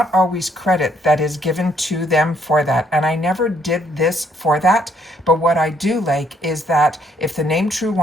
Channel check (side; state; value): both; normal; correlation 0.68